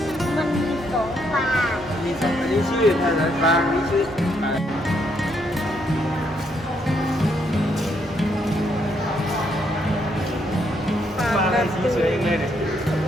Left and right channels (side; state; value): both; normal; correlation 0.74